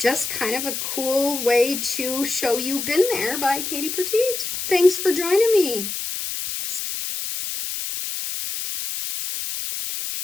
kind of a cool way to show you Been There by Katie Petite. Thanks for joining me.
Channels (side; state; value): left; noise; hiss, 5 dB below the sound